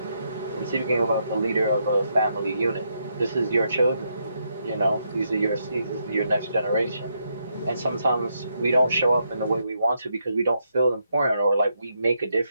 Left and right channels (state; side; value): inverted; both; correlation -0.79